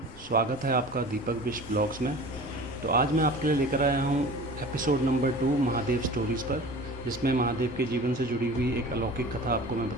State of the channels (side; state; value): right; noise; rumble, 23 dB below the sound